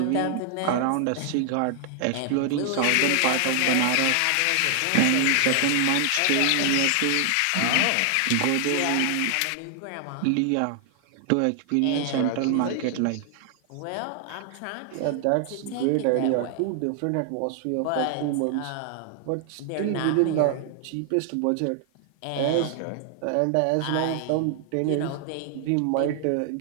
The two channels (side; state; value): both; different; correlation 0.00